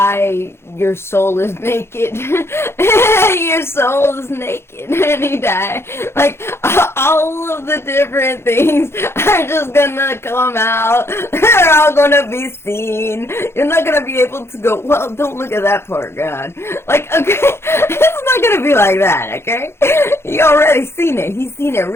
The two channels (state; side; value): late; right; 0.12 ms